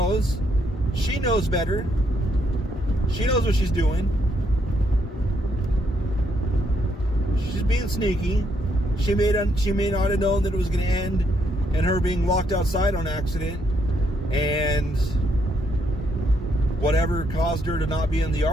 She knows better. She knows what she's doing. She's being sneaky. She may not have known that it was going to end in her being locked outside on accident. And whatever caused her to not be in the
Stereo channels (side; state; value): both; normal; correlation 0.74